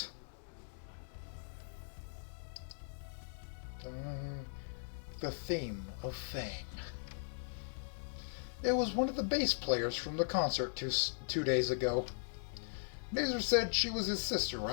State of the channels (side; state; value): right; silent; digital silence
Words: The theme of Fang. It was one of the bass players from the concert two days ago. Nazer said she was his sister,